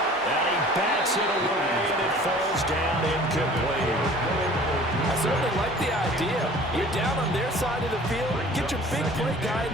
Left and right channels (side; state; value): both; normal; correlation 0.47